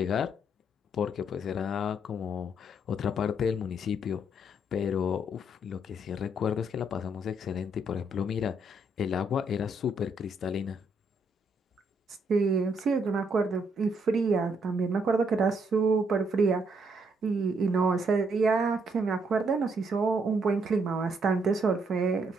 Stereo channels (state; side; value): normal; both; correlation 0.73